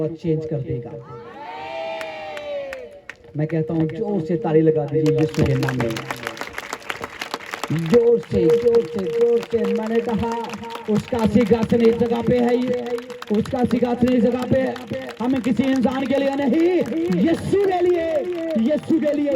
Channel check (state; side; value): identical; both; correlation 1.00